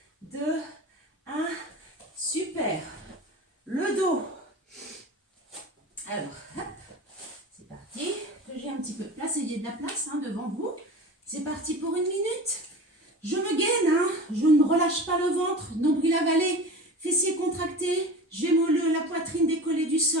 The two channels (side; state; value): both; normal; correlation 0.34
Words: 2, 1. Super. Le dos. Alors, hop, c'est parti. Que j'ai un petit peu de place, ayez de la place devant vous. C'est parti pour 1 minute. Je me gaine, je ne me relâche pas le ventre, nombril avalé, fessiers contractés. J'ai la poitrine décollée du